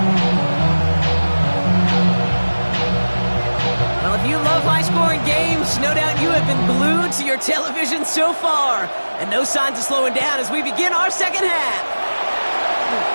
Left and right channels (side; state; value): both; inverted; correlation -1.00